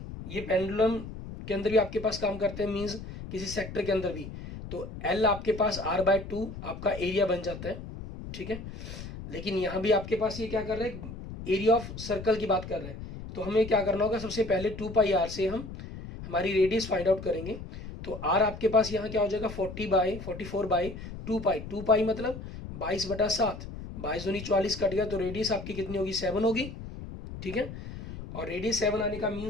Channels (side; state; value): left; noise; rumble, 11 dB below the sound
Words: ये पेंडुलम के अंदर भी आपके पास काम करते हैं, मीन्स किसी सेक्टर के अंदर भी। तो एल आपके पास r/2 आपका एरिया बन जाता है, ठीक है। लेकिन यहाँ भी आपके पास ये क्या कर रहे हैं, एरिया ऑफ सर्कल की बात कर रहे हैं। तो हमें क्या करना होगा, सबसे पहले 2 पाई आर से हम हमारी रेडियस फाइंड आउट करेंगे। तो आर आपके पास यहाँ क्या हो जाएगा, 44/2 पाई, 2 पाई मतलब 22/7, 22×2 = 44 कट गया, तो रेडियस आपकी कितनी होगी, 7 होगी, ठीक है। और रेडियस 7 आने का